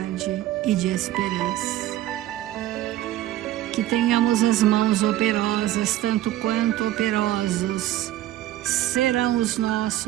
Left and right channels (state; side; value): quieter; left; 14.1 dB